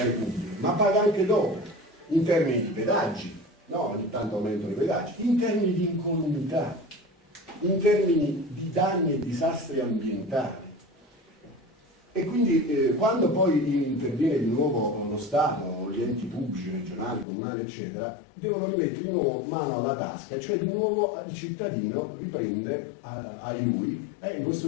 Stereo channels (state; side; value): drops out; right; at 17.2 s